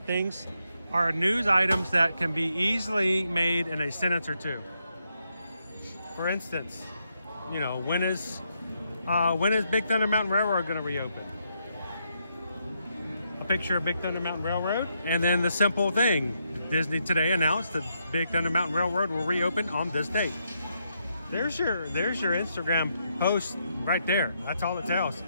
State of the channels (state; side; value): inverted; both; correlation -0.79